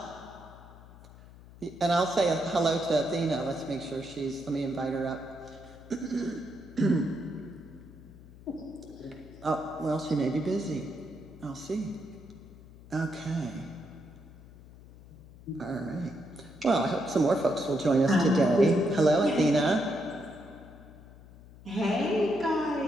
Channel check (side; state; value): left; noise; hum, 20 dB below the sound